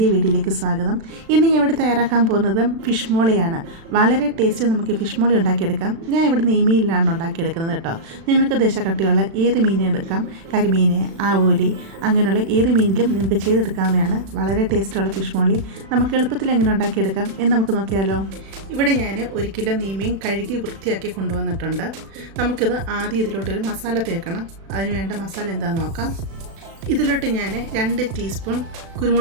വീഡിയോയിലേക്ക് സ്വാഗതം. ഇന്ന് ഞാൻ ഇവിടെ തയ്യാറാക്കാൻ പോകുന്നത് ഫിഷ് മോളിയാണ്. വളരെ ടേസ്റ്റ് നമുക്ക് ഫിഷ് മോളി ഉണ്ടാക്കിയെടുക്കാം. ഞാൻ ഇവിടെ നെയ്മീനിലാണ് ഉണ്ടാക്കിയെടുക്കുന്നത് കേട്ടോ. നിങ്ങൾക്ക് ദേശക്കട്ടിയുള്ള ഏത് മീനും എടുക്കാം. കരിമീൻ, ആവോലി, അങ്ങനെയുള്ള ഏത് മീനിലും നിങ്ങൾക്ക് ചെയ്തെടുക്കാവുന്നതാണ്. വളരെ ടേസ്റ്റുള്ള ഫിഷ് മോളി നമുക്ക് എളുപ്പത്തിൽ എങ്ങനെ ഉണ്ടാക്കിയെടുക്കാം എന്ന് നമുക്ക് നോക്കിയാലോ. ഇവിടെ ഞാൻ 1 കിലോ നെയ്മീൻ കഴുകി വൃത്തിയാക്കി കൊണ്ടുവന്നിട്ടുണ്ട്. നമുക്കിത് ആദ്യം ഇതിലോട്ടൊരു മസാല തേക്കണം. അതിന് വേണ്ട മസാല എന്താണെന്ന് നോക്കാം. ഇതിലോട്ട് ഞാൻ 2 ടീസ്പൂൺ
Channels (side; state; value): left; late; 36 ms